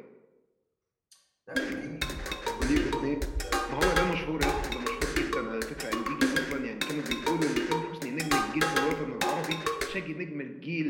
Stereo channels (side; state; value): both; identical; correlation 1.00